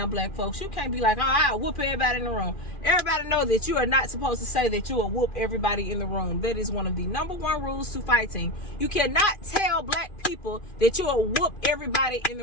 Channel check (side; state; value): right; late; 2.5 ms